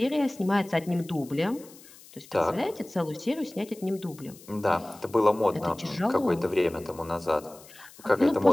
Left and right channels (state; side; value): noise; left; hiss, 22 dB below the sound